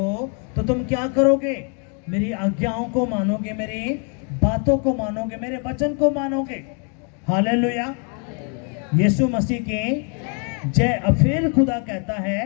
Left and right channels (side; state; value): right; quieter; 39.5 dB